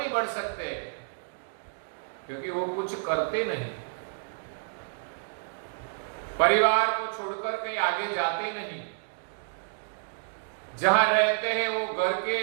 बढ़ सकते? क्योंकि वो कुछ करते नहीं। परिवार को छोड़कर कहीं आगे जाते नहीं, जहां रहते हैं वो घर के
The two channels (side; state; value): left; silent; digital silence